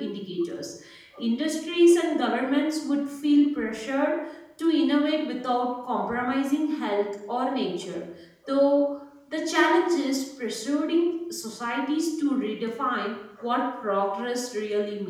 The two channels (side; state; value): both; identical; correlation 1.00